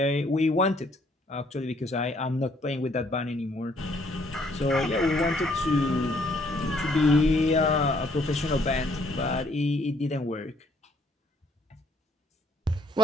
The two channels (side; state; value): both; normal; correlation 0.66